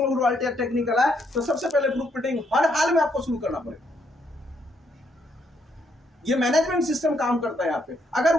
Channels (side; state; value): both; normal; correlation 0.74